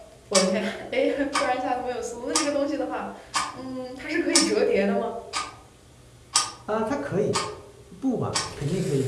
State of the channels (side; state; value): both; identical; correlation 1.00